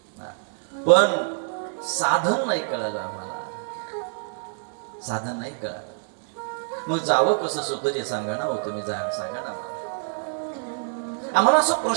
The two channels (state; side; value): silent; left; digital silence